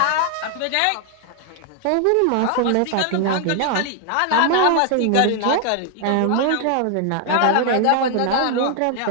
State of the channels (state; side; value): different; both; correlation 0.00